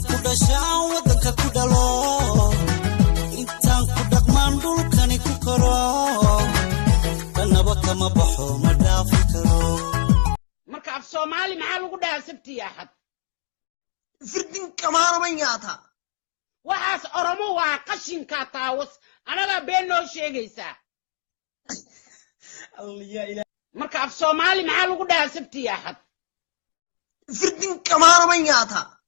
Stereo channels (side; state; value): right; silent; digital silence